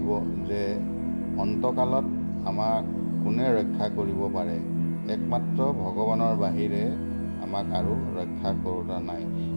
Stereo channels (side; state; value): both; inverted; correlation -1.00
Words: যে অন্তকালত আমাক কোনে ৰক্ষা কৰিব পাৰে? একমাত্ৰ ভগৱানৰ বাহিৰে আমাক আৰু ৰক্ষা কৰোতা নাই।